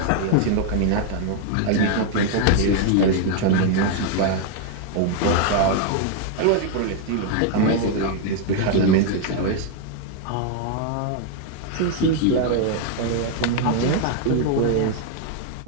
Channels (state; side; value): different; both; correlation 0.00